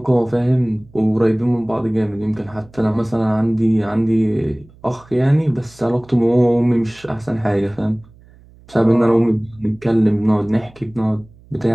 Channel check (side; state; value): right; noise; hum, 26 dB below the sound